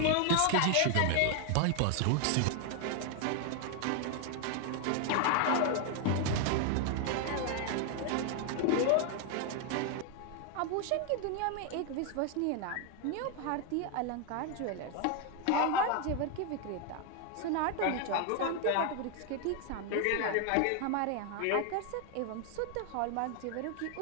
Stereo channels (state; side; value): different; both; correlation 0.01